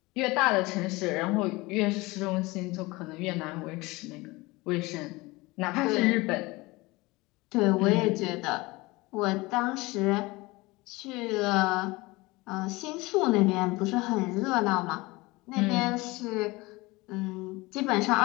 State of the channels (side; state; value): right; quieter; 22.4 dB